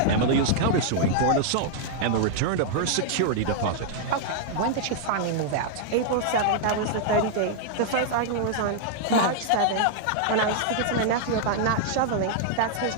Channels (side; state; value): both; different; correlation -0.01